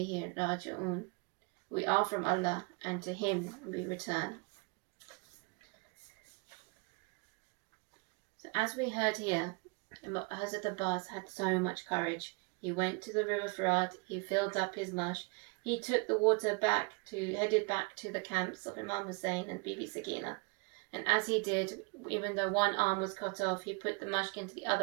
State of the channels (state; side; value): quieter; left; 31.5 dB